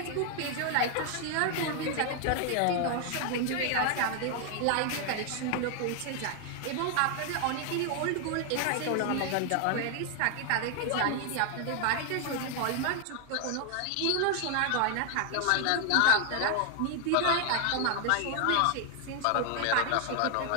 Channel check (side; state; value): both; different; correlation 0.00